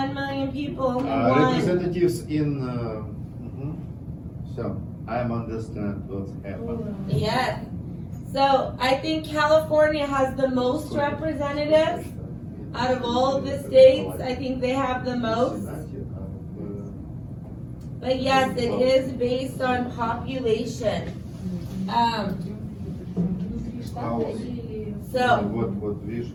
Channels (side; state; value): both; identical; correlation 1.00